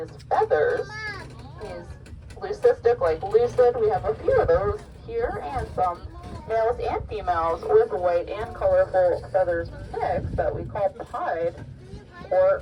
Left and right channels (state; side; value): identical; both; correlation 1.00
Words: feathers. He's leucistic, like lucid. We have a few of those here, and some males and females with white and colorful feathers mixed that we call pied or